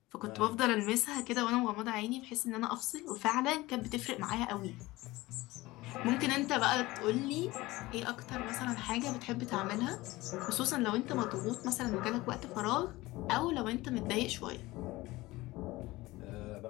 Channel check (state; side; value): quieter; right; 19.6 dB